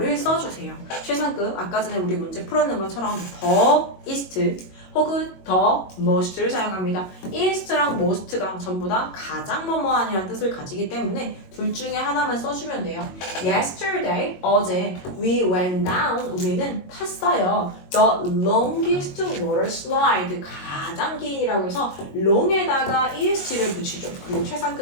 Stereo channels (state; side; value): late; right; 22 ms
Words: 써주세요. 최상급, 아까 전에 우리 문제 풀었는 것처럼 더, ist, 혹은 더 most를 사용합니다. ist랑 most가 전부 다 가장 뭐뭐한이라는 뜻을 가지기 때문에 둘 중에 하나만 써주면 돼요. Yesterday, 어제 we went down, 우리는 탔어요. The longest water slide, 가장 긴이라고 해서 long에다가 est를 붙이죠. 그리고